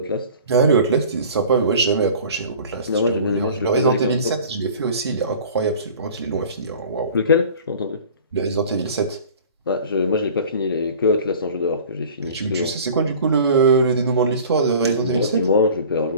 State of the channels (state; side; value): inverted; both; correlation -0.44